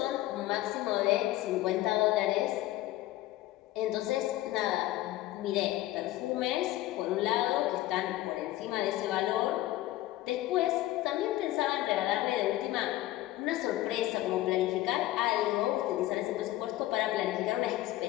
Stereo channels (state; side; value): quieter; right; 15.9 dB